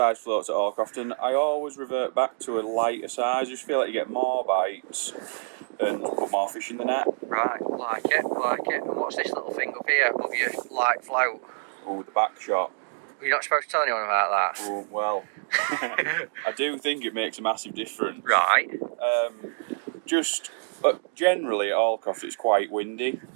floats at Hallcroft, and I always revert back to a lighter size. I just feel like you get more bites and put more fish in the net. Right, like it. And what's this little thing up here above your light float? Oh, with the back shot. You're not supposed to tell anyone about that. Oh, well, I do think it makes a massive difference. Right. Generally at Hallcroft it's quite windy.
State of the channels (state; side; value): silent; left; digital silence